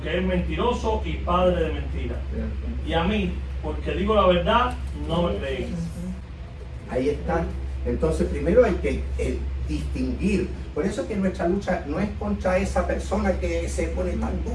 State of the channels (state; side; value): identical; both; correlation 1.00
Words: es mentiroso y padre de mentira. Y a mí, porque digo la verdad, no me creéis. Ahí está. Entonces primero hay que distinguir. Por eso es que nuestra lucha no es contra esa persona que se pone tan